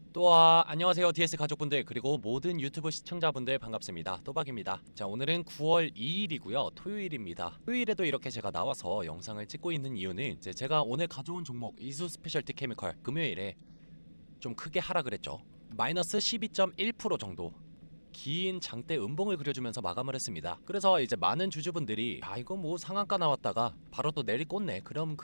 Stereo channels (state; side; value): inverted; both; correlation -1.00